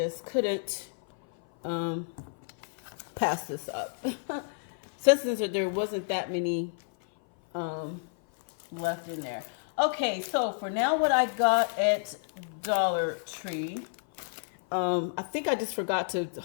couldn't pass this up. since there wasn't that many left in there. Okay, so for now, what I got at Dollar Tree, I think I just forgot to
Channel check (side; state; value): right; silent; 56 dB below the other